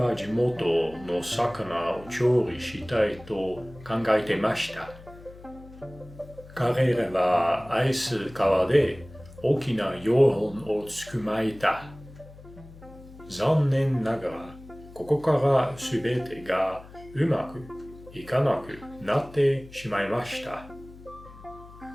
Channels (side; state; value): left; noise; hum, 19 dB below the sound